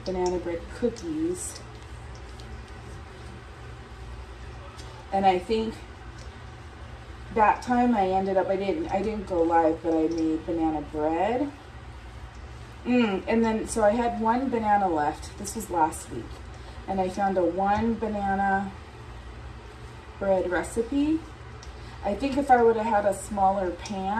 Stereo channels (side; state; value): both; identical; correlation 1.00